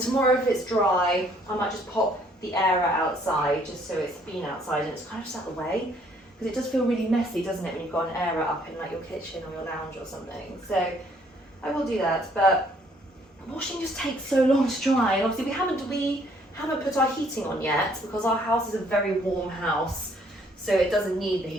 if it's dry, I might just pop the air outside just so it's been outside and it's kind of just out of the way, because it does feel really messy, doesn't it, when you've got an air up in like your kitchen or your lounge or something. So I will do that, but washing just takes so long to dry, and obviously we haven't put our heating on yet because our house is a very warm house. So it doesn't need the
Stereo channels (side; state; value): both; normal; correlation 0.64